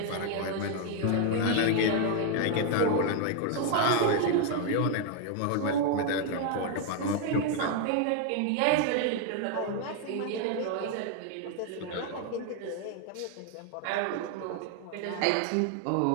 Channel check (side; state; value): both; different; correlation 0.00